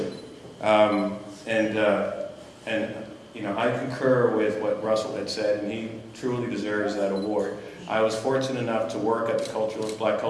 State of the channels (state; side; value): identical; both; correlation 1.00